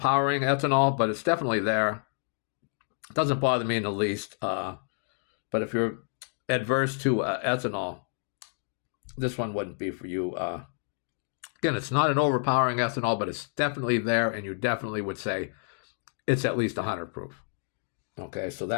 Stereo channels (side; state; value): right; silent; digital silence